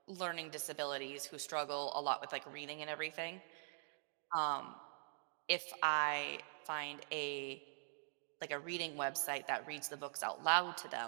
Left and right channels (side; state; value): left; silent; digital silence